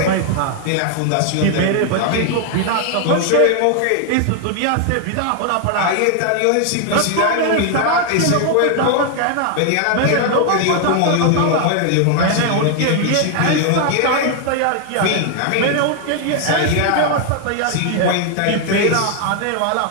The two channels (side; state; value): both; different; correlation 0.00